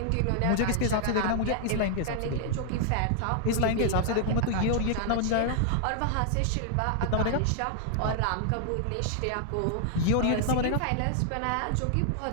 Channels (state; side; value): different; both; correlation 0.00